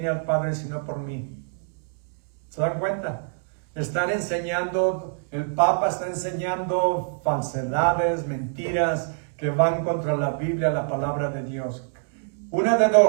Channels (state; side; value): silent; left; digital silence